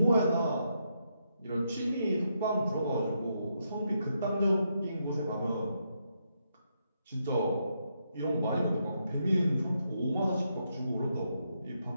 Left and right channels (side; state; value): both; inverted; correlation -0.79